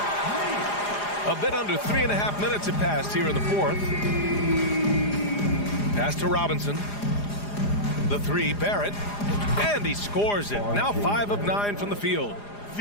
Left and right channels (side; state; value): right; late; 4.9 ms